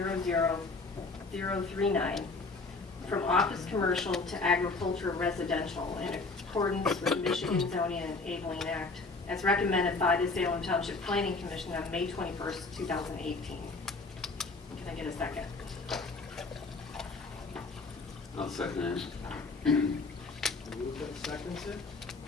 from office commercial to agricultural residential in accordance with Michigan Zoning and Enabling Act, as recommended by the Salem Township Planning Commission on May 21st, 2018. Can I get a second? I'll second it. Move that seconds it.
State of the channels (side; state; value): right; quieter; 3.7 dB